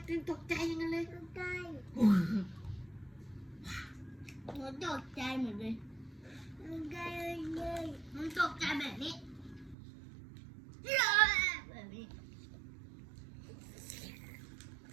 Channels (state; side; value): drops out; left; at 9.8 s